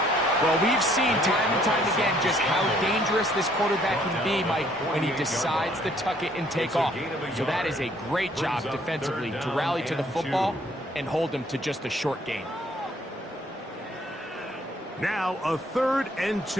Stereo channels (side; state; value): both; normal; correlation 0.63